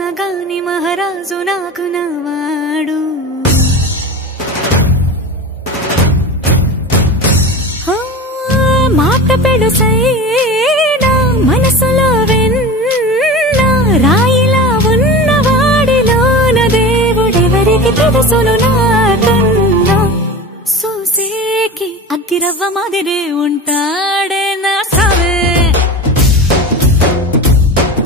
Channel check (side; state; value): both; normal; correlation 0.30